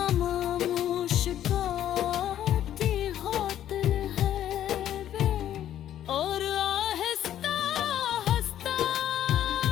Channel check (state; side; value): quieter; right; 11.4 dB